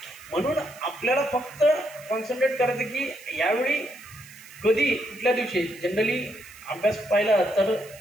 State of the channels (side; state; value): right; noise; hiss, 21 dB below the sound